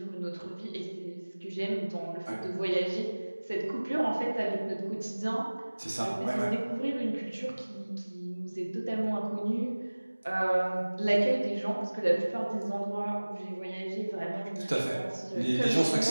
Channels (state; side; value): inverted; both; correlation -1.00